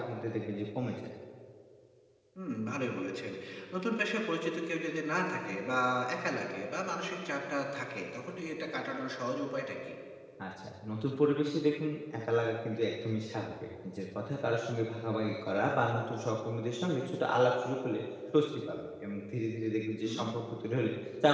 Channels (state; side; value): identical; both; correlation 1.00